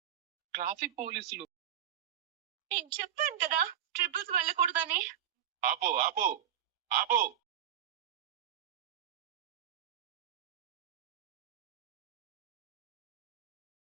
ట్రాఫిక్ పోలీసులు. నేను చెప్పాను కదా! ట్రిపుల్స్ వెళ్ళకూడదని. ఆపు ఆపు ఆపు.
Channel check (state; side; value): quieter; left; 10.3 dB